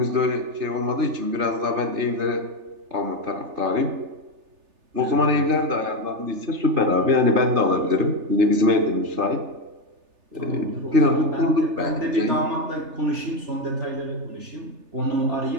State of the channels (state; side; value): late; left; 3.3 ms